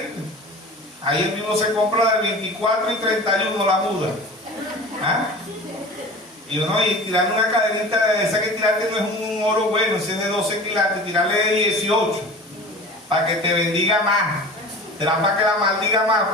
Ahí el mismo se compra del 24 y 31 la muda. ¿Ah? Y uno, y tirarle una cadenita de esa que tirarte no es un oro bueno, ese es de 12 quilates, tirarle de 18 para que te bendiga más. Te da para que la maldiga más,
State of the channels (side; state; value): both; normal; correlation 0.37